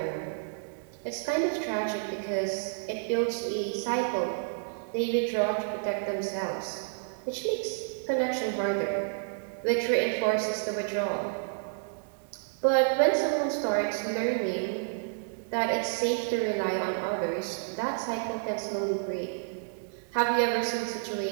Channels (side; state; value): left; silent; digital silence